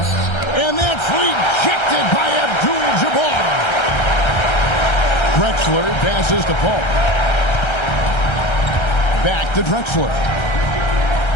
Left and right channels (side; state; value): right; late; 1.3 ms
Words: And that's rejected by Abdul-Jabbar. Drexler passes to Paul. Back to Drexler.